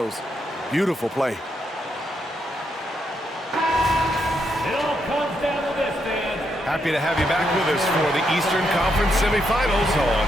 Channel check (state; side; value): normal; both; correlation 0.79